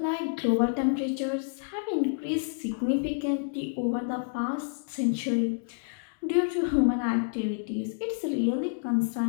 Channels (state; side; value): silent; right; digital silence